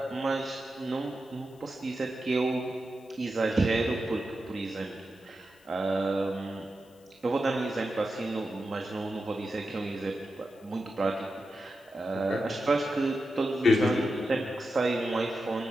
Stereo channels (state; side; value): noise; left; hiss, 30 dB below the sound